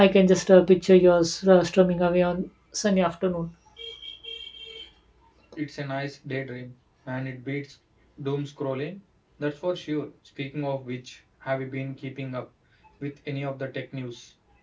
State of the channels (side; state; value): both; identical; correlation 1.00